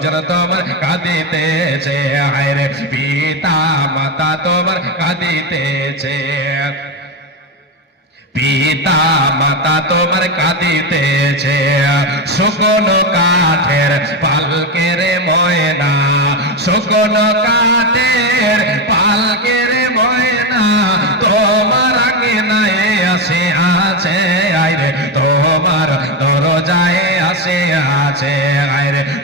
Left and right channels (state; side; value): normal; both; correlation 0.12